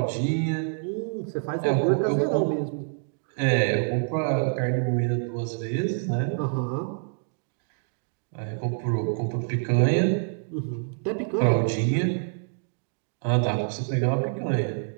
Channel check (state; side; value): silent; left; digital silence